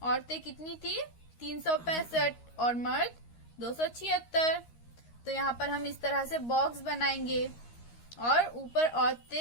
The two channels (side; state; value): right; late; 13 ms